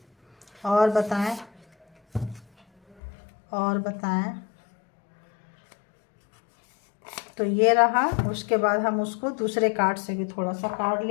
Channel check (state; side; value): drops out; right; at 3.0 s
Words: और बताएं, और बताएं। तो ये रहा, उसके बाद हम उसको दूसरे कार्ड से भी थोड़ा सा कार्ड